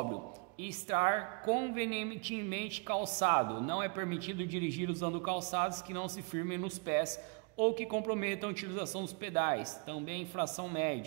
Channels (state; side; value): quieter; left; 32.0 dB